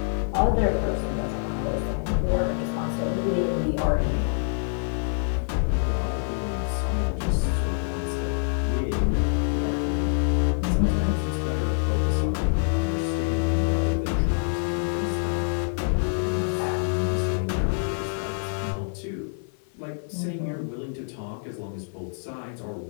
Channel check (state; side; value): silent; right; digital silence